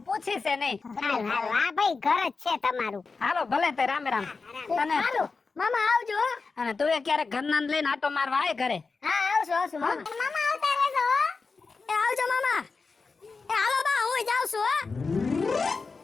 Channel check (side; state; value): right; quieter; 4.4 dB